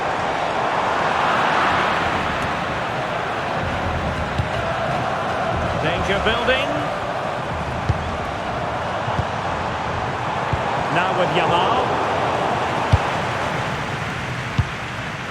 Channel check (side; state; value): both; identical; correlation 1.00